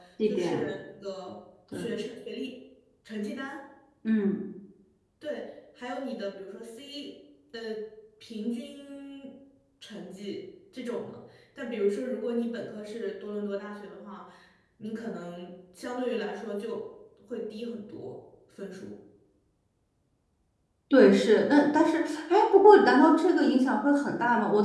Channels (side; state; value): both; identical; correlation 1.00